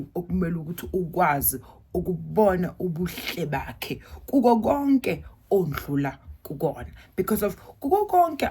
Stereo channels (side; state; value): both; identical; correlation 1.00